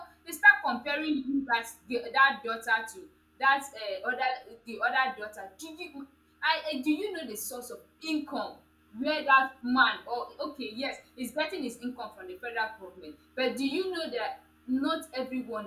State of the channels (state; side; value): identical; both; correlation 1.00